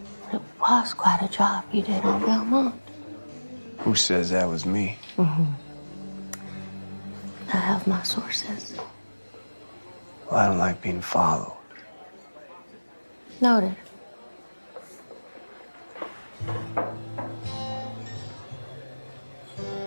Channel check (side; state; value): both; inverted; correlation -1.00